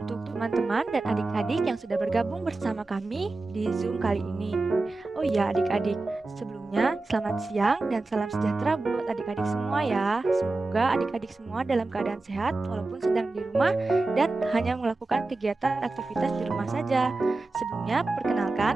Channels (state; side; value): quieter; left; 3.3 dB